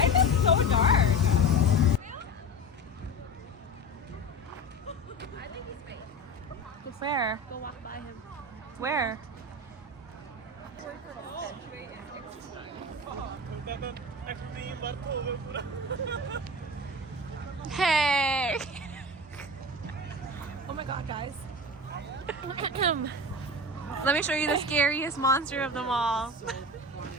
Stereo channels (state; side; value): normal; both; correlation 0.29